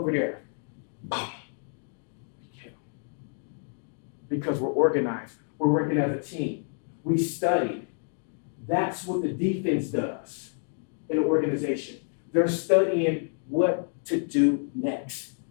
there. Because we're organized. We're working as a team. We studied. That's what the defense does in an organization. They're studying what to do next.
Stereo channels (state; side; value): silent; right; digital silence